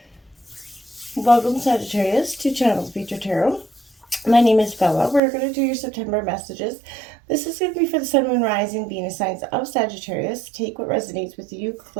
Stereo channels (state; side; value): drops out; left; at 5.2 s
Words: Welcome, Sagittarius, to Channel Thro Tarot. My name is Bella. We're going to do your September messages. This is going to be for the Sun, Moon, Rising, Venus signs of Sagittarius. Take what resonates with you,